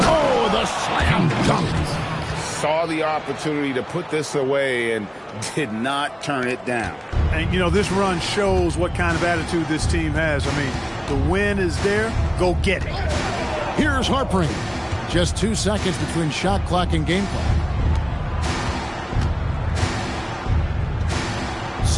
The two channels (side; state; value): both; identical; correlation 1.00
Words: the slam dunk. Saw the opportunity to put this away and did not turn it down. And, you know, this run shows what kind of attitude this team has. I mean, the win is there. Go get it. Here's Harpering. Just 2 seconds between shot clock and game clock.